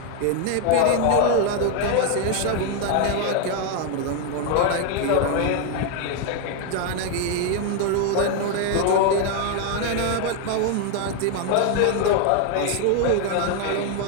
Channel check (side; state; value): both; different; correlation 0.01